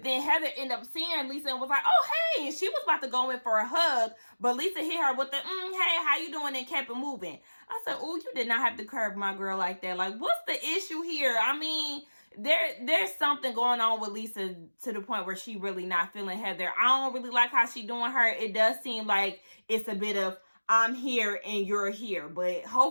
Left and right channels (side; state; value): both; inverted; correlation -1.00